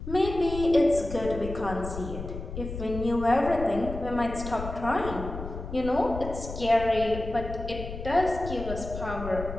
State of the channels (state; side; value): noise; left; rumble, 8 dB below the sound